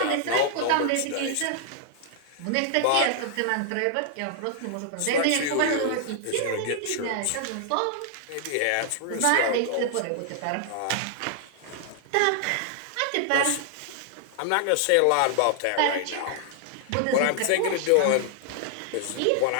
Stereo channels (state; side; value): different; both; correlation 0.00